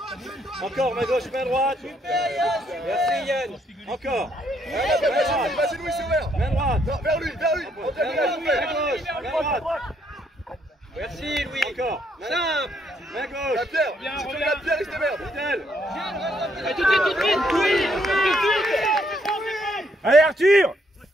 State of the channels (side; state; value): both; normal; correlation 0.72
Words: Encore, main gauche, main droite! Merci Yann! Encore! Vas-y Louis, c'est ouvert! Main droite! Non, vers lui! Main gauche, main droite! Merci Louis! Encore! Simple! Main gauche! La pierre! Si tu veux la pierre, il se démerde! Tout de suite, oui! Allez Arthur!